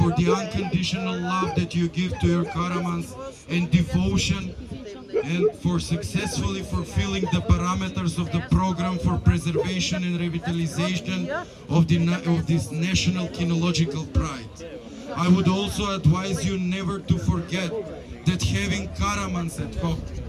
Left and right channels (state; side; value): identical; both; correlation 1.00